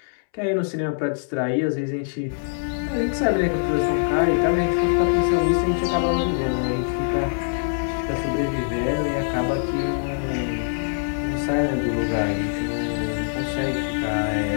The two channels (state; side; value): silent; right; 63 dB below the other